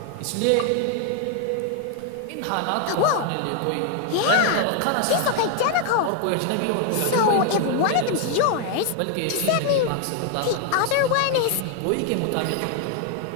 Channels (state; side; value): different; both; correlation 0.00